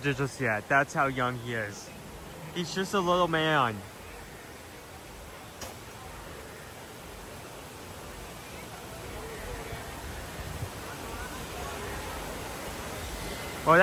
yet. That's how young he is. He's just a little man. Well,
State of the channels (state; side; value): identical; both; correlation 1.00